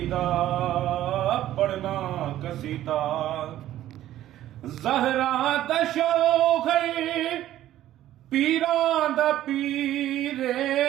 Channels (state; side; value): quieter; left; 13.2 dB